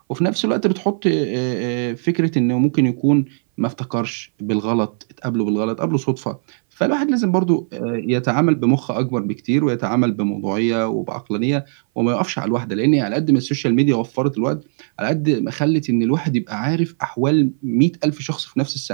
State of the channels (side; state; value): left; silent; 61 dB below the other